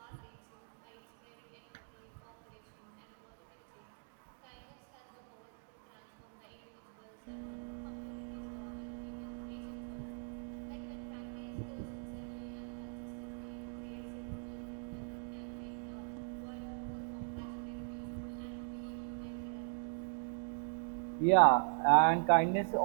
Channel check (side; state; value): left; silent; digital silence